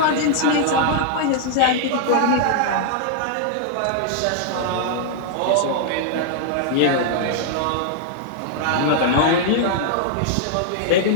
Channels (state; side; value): different; both; correlation -0.01